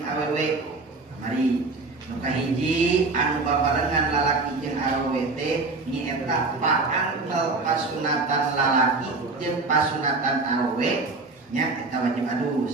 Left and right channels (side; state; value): left; quieter; 3.6 dB